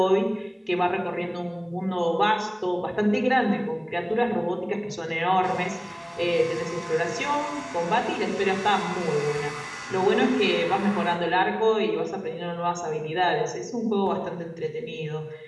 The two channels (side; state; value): both; identical; correlation 1.00